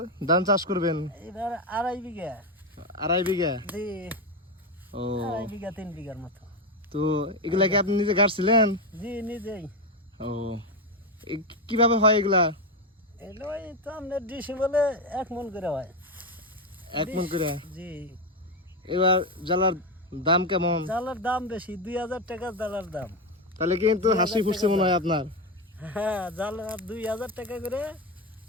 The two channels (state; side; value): normal; both; correlation 0.11